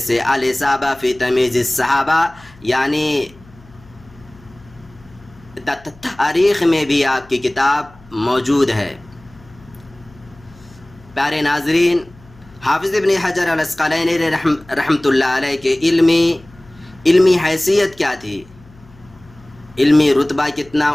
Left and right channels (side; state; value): left; noise; hum, 25 dB below the sound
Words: الاصابہ فی تمیز الصحابہ، یعنی تاریخ میں بھی آپ کی کتاب موجود ہے۔ پیارے ناظرین، حافظ ابن حجر العسقلانی رحمۃ اللہ علیہ کے علمی حیثیت کیا تھی، علمی رتبہ کتنا